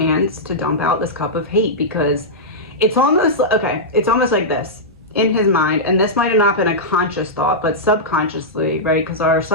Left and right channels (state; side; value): normal; both; correlation -0.11